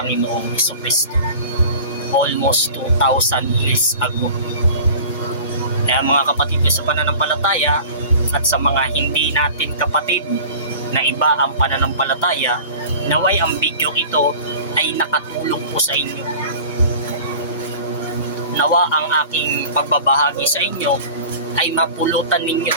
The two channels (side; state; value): both; inverted; correlation -0.40